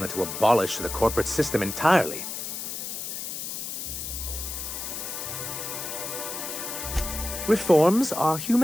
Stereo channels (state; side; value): noise; left; hiss, 6 dB below the sound